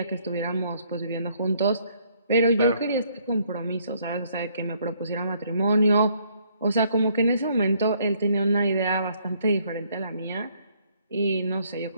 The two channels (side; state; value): both; inverted; correlation -0.67